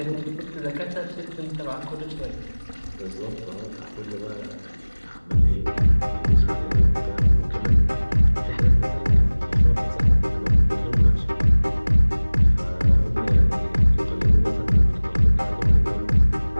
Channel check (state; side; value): inverted; both; correlation -1.00